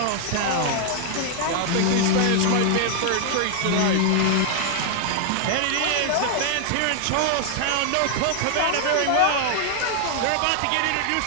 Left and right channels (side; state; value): both; different; correlation 0.00